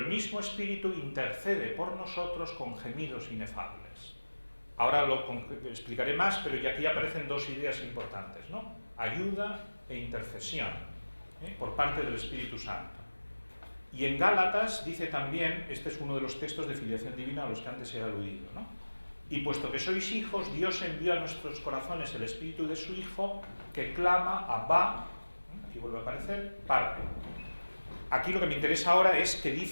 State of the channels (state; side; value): inverted; both; correlation -1.00